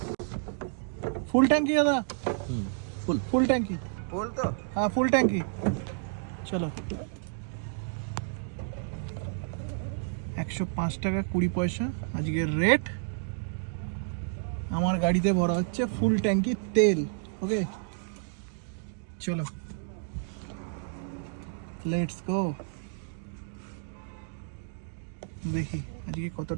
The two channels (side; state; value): left; silent; digital silence